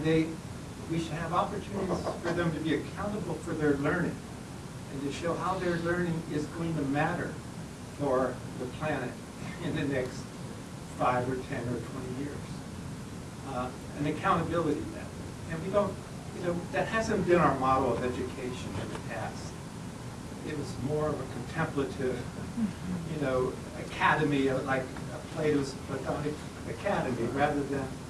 we should have opportunities for them to be accountable for their learning and to show how their learning is going to matter for the planet in the next 5 or 10 or 20 years. An accountability method. And we don't, that hasn't been our model of education in the past. It was more of a contemplative, academy, like Plato's Platonic academy, rather than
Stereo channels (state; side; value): identical; both; correlation 1.00